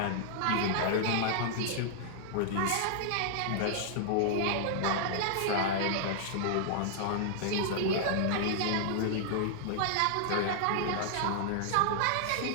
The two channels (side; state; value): both; different; correlation -0.01